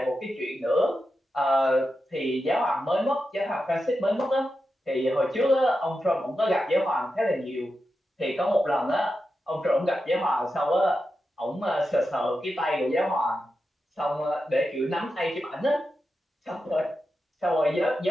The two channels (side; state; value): both; normal; correlation 0.89